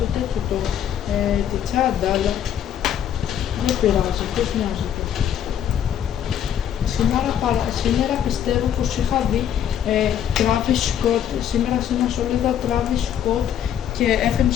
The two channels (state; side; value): quieter; right; 9.7 dB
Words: τέτοιο τη τσάντα, αλλά δεν πειράζει, ποιος νοιάζεται. Σήμερα πιστεύω πως είχα δει Travis Scott, σήμερα σε ένα σωλίδα Travis Scott και